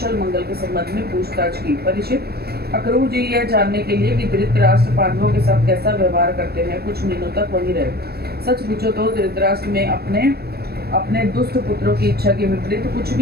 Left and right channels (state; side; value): late; left; 0.46 ms